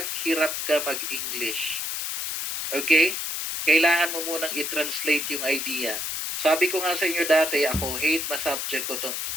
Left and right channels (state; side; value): noise; left; hiss, 3 dB below the sound